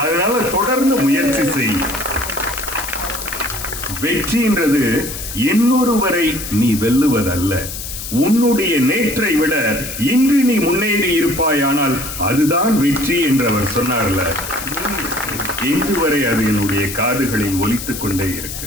அதனால தொடர்ந்து முயற்சி செய். வெற்றின்றது இன்னொருவரை நீ வெல்லுவதல்ல, உன்னுடைய நேற்றை விட இன்று நீ முன்னேறி இருப்பாயானால் அதுதான் வெற்றி என்று அவர் சொன்னார்ல. இன்று வரை அது என்னுடைய காதுகளில் ஒலித்துக் கொண்டே இருக்கு.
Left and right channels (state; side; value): noise; left; hiss, 8 dB below the sound